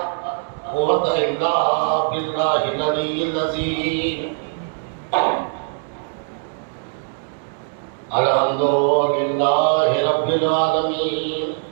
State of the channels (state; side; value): silent; left; digital silence